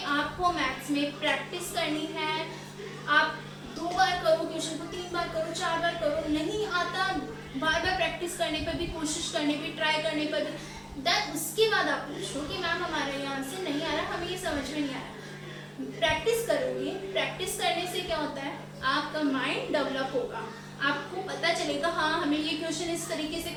आपको मैथ्स में प्रैक्टिस करनी है, आप 2 बार करो क्वेश्चन को, 3 बार करो, 4 बार करो, नहीं आता बार बार प्रैक्टिस करने पर भी, कोशिश करने पर, ट्राई करने पर भी, देन उसके बाद आप पूछो कि मैम हमारे यहाँ से नहीं आ रहा, हमें ये समझ में नहीं आ रहा। प्रैक्टिस करोगे, प्रैक्टिस करने से क्या होता है, आपका माइंड डेवलप होगा, आपको पता चलेगा हाँ हमें ये क्वेश्चन इस तरीके से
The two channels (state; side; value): identical; both; correlation 1.00